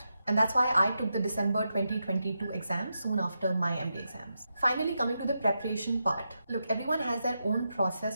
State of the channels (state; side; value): inverted; both; correlation -0.87